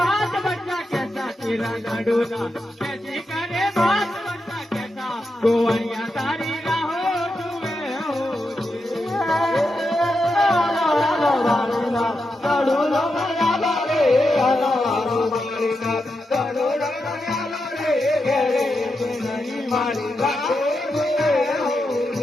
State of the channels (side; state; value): both; normal; correlation 0.86